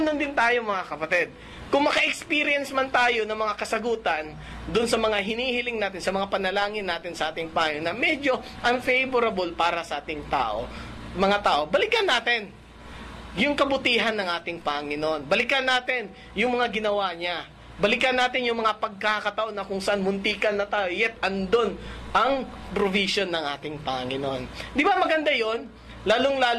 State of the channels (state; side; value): identical; both; correlation 1.00